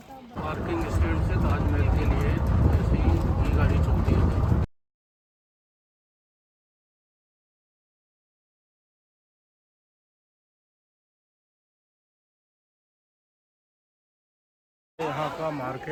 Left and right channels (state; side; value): identical; both; correlation 1.00